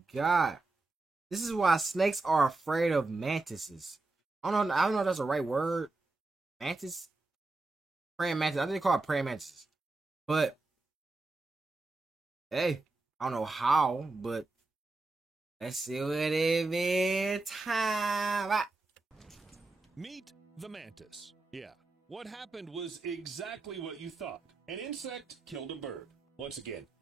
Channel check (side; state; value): left; quieter; 3.3 dB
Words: got. This is why snakes are afraid of mantises. I don't know if that's the right word. Mantis? Praying mantis. I think they call it praying mantises. But hey, I don't know how, but let's see what it is. Time. Meet the mantis. Yeah, what happened was exactly what you thought. An insect killed a bird. Once again,